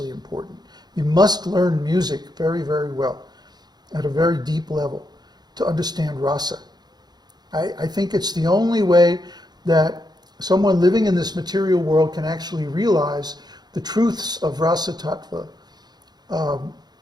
important. You must learn music very, very well, at a very deep level, to understand rasa. I think it's the only way that someone living in this material world can actually realize the truths of rasa tattva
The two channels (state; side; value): late; left; 0.20 ms